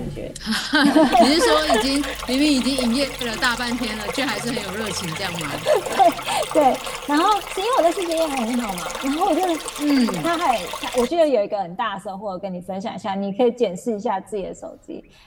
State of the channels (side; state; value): both; identical; correlation 1.00